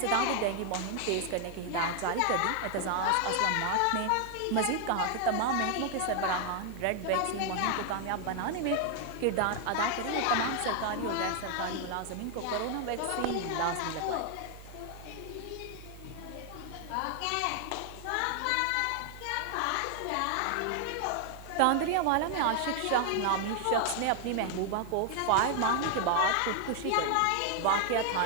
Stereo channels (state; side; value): different; both; correlation 0.00